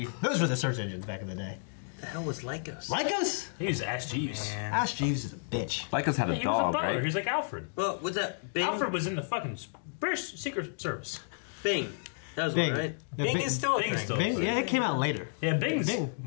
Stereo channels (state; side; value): silent; right; digital silence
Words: Those were the search engines back in the day. The hell was Lycos? Lycos? He was Ash Jeeves. Ash Jeeves is a bitch. Lycos had a he dog, was a butler. right? He was like Alfred. Well, what's that? Bing? Alfred was in the fucking British Secret Service. Bing. That was Bing. one, right? Yeah, Bing is still a thing. Bing? Yeah, it came out later. Yeah, Bing's